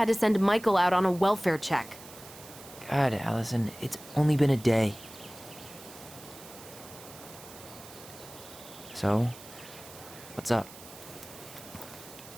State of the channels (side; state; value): right; noise; hiss, 17 dB below the sound